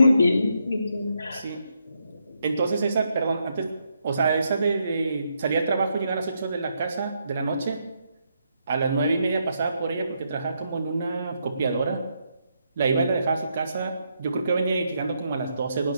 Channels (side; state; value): both; inverted; correlation -0.79